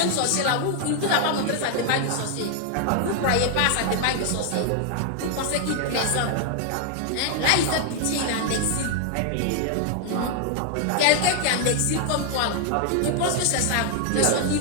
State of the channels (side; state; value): both; different; correlation 0.00